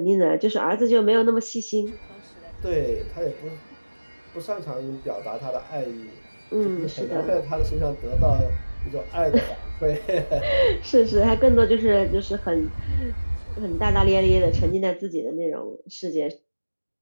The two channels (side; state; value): both; inverted; correlation -1.00